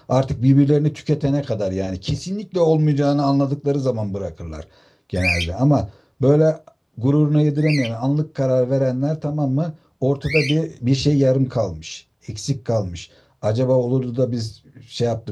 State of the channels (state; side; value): identical; both; correlation 1.00